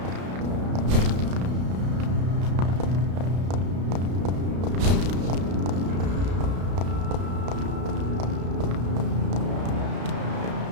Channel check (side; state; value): left; late; 33 ms